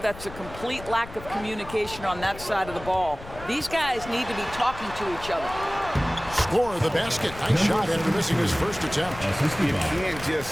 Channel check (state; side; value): noise; left; rumble, 15 dB below the sound